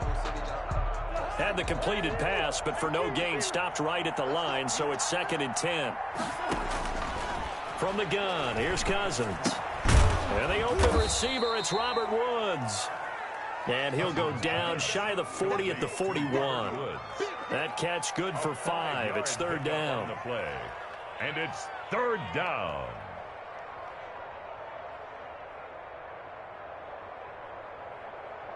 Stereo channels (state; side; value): identical; both; correlation 1.00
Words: Had the completed pass, but for no gain, stopped right at the line, so it's 2nd and 10. From the gun, here's Cousins. And the open receiver, it's Robert Woods. And he'll go down shy of the 40 at the 41. That catch good for 5. It's 3rd down. And it's 3rd down.